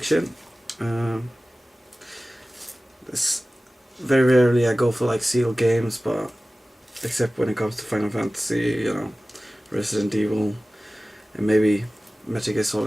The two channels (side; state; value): both; normal; correlation 0.97